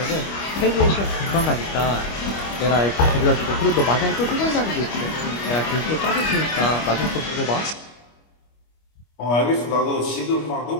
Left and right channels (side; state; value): right; late; 25 ms